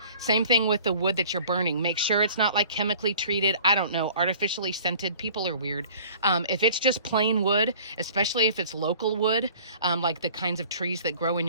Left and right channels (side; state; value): both; inverted; correlation -0.49